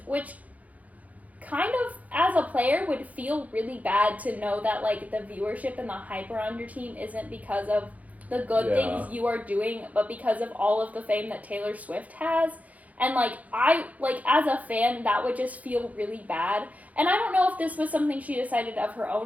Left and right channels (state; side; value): late; left; 0.073 ms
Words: which kind of, as a player, would feel really bad to know that, like, the viewership and the hype around your team isn't because of the good things you are doing, but because of all of the fame that Taylor Swift has. And, like, as a fan, that would just feel really bad. And I don't know if this was something she decided of her